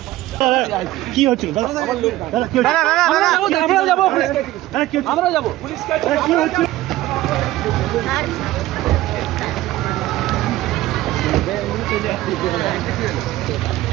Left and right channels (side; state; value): left; quieter; 16.2 dB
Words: কি হচ্ছিল আমরা যাবো পুলিশকে কি হচ্ছে